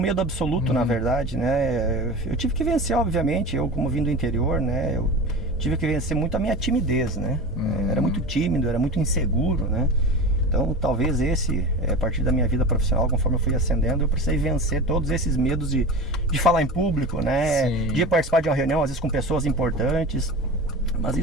absoluto, na verdade, né? Eu tive que vencer, obviamente, eu como vim do interior, né? Eu tive que vencer muito a minha timidez, né? Era muito tímido, era muito inseguro, né? Então talvez a partir da minha vida profissional, conforme eu fui ascendendo, eu precisei vencer todos esses medos de falar em público, né? De participar de uma reunião, às vezes com pessoas importantes. Mas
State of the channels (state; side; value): normal; both; correlation 0.30